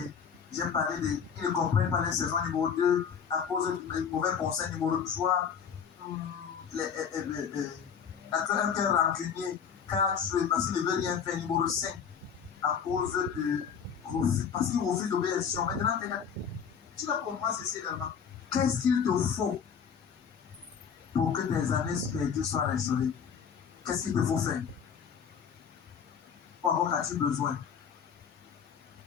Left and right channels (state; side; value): quieter; right; 7.2 dB